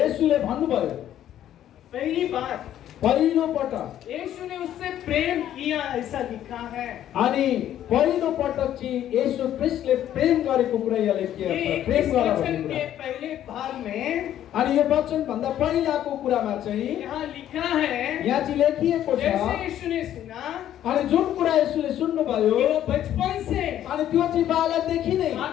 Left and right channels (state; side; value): quieter; right; 11.5 dB